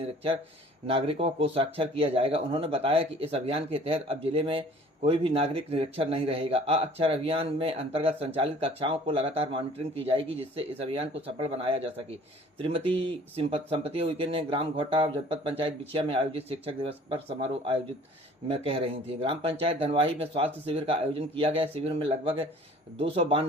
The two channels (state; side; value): normal; both; correlation 0.51